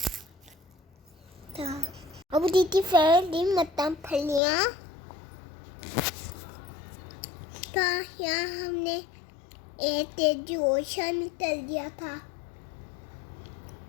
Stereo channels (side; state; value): right; drops out; at 4.4 s